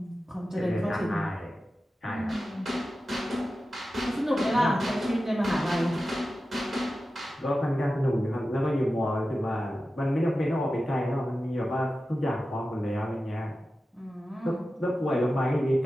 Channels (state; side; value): normal; both; correlation 0.93